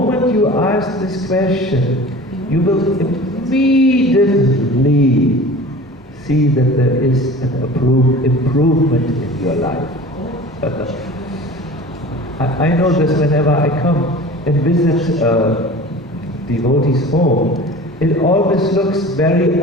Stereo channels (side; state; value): both; normal; correlation 0.40